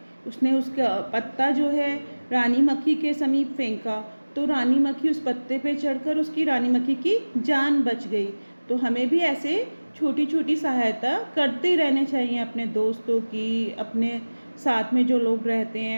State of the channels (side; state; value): both; inverted; correlation -1.00